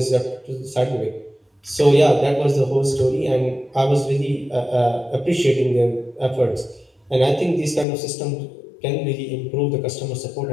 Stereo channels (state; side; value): drops out; right; at 7.9 s